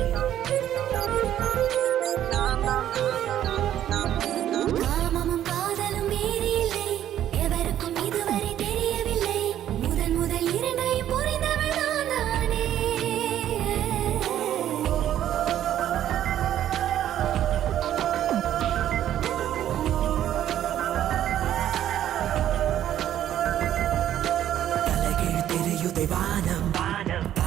காமமும் காதலும் வேறு இல்லை, எவருக்கும் இதுவரை தெரியவில்லை. முதன் முதல் இரண்டையும் புரிந்தவள் நான் தானே. தலைகீழ் தெரியுதை வானம்,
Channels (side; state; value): left; quieter; 11.5 dB